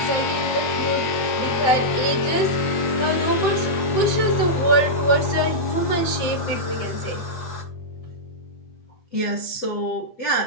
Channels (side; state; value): right; late; 7.7 ms